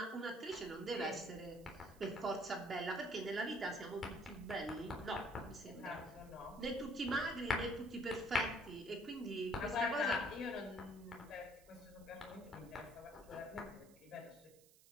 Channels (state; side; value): noise; right; hiss, 25 dB below the sound